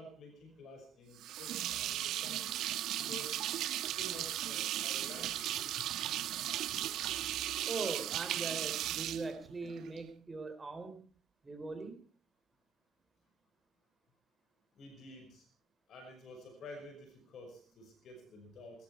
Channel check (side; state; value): left; quieter; 9.3 dB